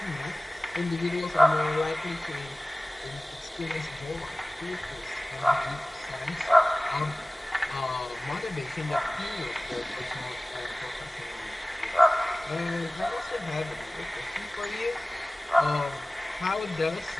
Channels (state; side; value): normal; both; correlation 0.98